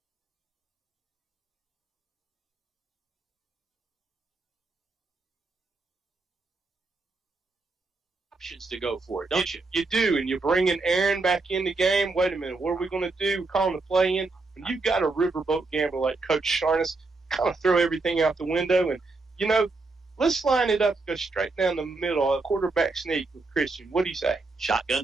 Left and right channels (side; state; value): left; quieter; 3.6 dB